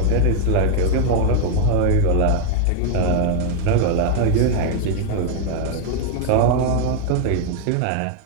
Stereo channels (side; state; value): both; different; correlation 0.00